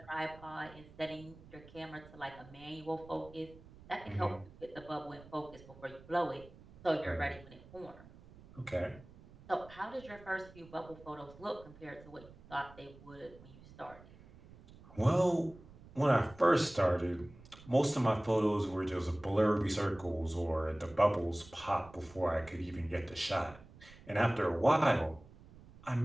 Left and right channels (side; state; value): right; noise; rumble, 21 dB below the sound